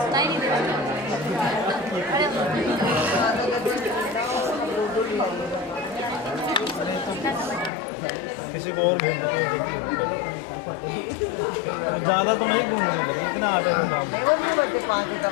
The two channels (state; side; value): drops out; right; at 7.7 s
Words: किसी को और ज़्यादा तो नहीं घूमेंगे इतना आटे का काम।